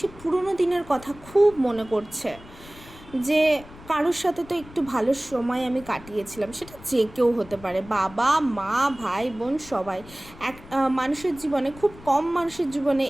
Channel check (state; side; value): noise; left; rumble, 19 dB below the sound